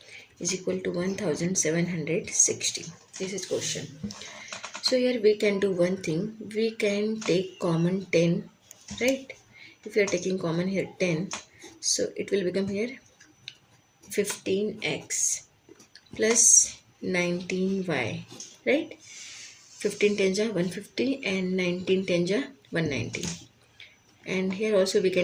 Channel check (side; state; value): both; identical; correlation 1.00